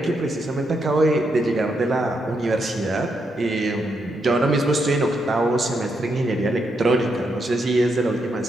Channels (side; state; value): both; normal; correlation 0.80